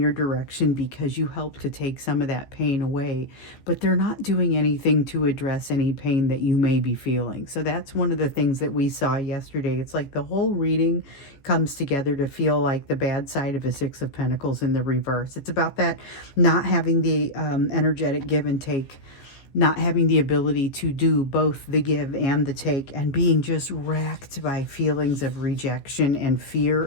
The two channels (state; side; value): late; right; 15 ms